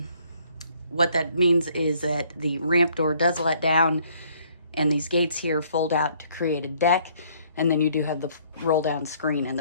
What that means is that the ramp door does let down, and these gates here fold out to create a deck, and then you do have the roll down screen in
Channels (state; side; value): inverted; both; correlation -0.63